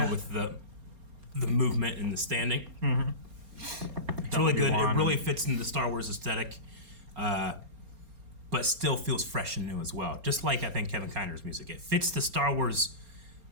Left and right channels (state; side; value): late; left; 4.3 ms